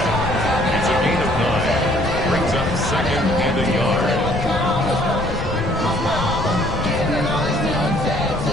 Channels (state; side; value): noise; left; rumble, 7 dB below the sound